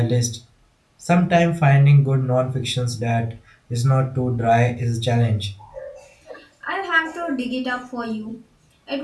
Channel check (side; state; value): both; identical; correlation 1.00